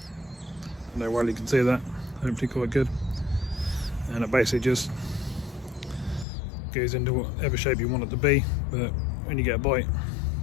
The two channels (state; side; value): drops out; right; at 6.2 s